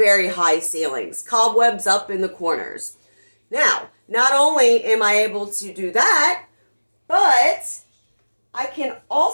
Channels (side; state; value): both; inverted; correlation -1.00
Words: high ceilings, cobwebs up in the corners. Now, not only am I able to do that, but I can